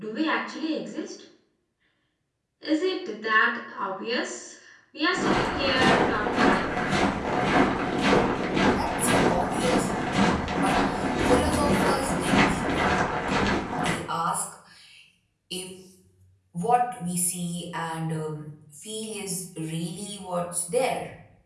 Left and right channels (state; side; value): identical; both; correlation 1.00